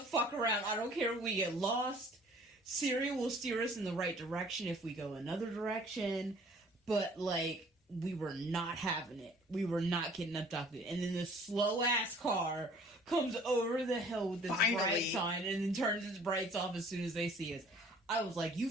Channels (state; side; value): normal; both; correlation 0.53